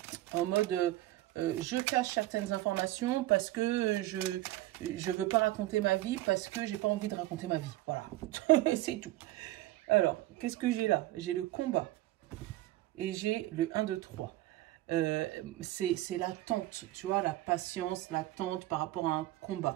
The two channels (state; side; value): quieter; left; 16.4 dB